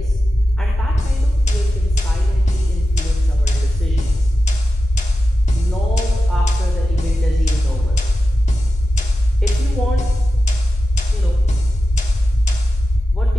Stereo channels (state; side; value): normal; both; correlation 0.92